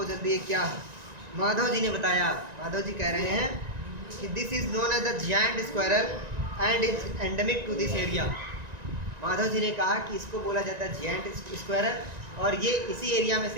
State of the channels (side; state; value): left; late; 1.9 ms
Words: जल्दी ये क्या है। माधव जी ने बताया, माधव जी कह रहे हैं कि this is known as the giant squirrel and is endemic to this area. Madhav ji ने कहा कि इसको बोला जाता है जायंट स्क्वायरल, और ये इसी एरिया में